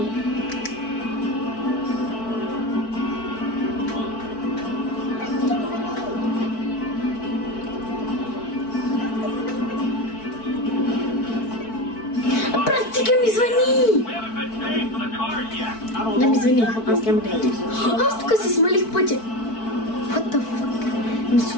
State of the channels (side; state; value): right; late; 4.5 ms